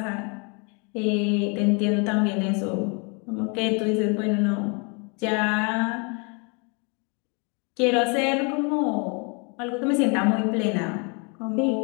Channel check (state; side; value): quieter; right; 33.9 dB